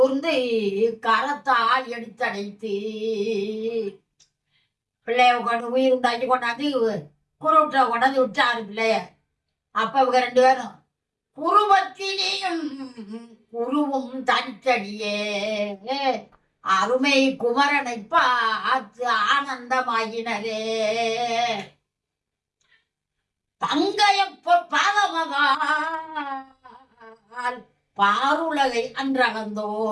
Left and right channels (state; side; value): identical; both; correlation 1.00